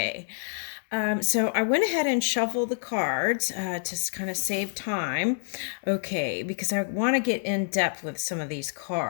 So I went ahead and shuffled the cards to kind of save time. Okay, because I want to get in depth with some of these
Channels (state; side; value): silent; right; digital silence